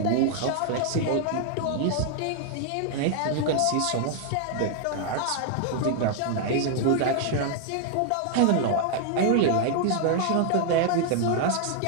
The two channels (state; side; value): different; both; correlation 0.00